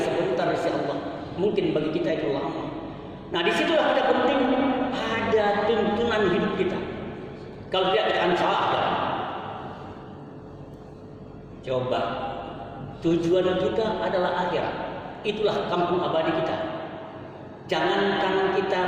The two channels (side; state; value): both; identical; correlation 1.00